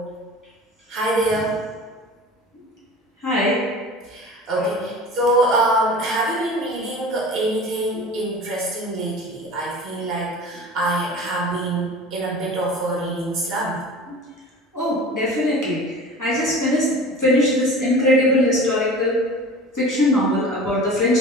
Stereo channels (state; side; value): normal; both; correlation 0.39